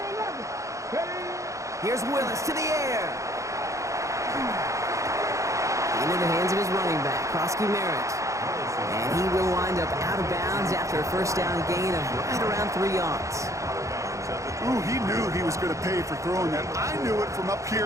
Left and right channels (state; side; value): late; left; 0.15 ms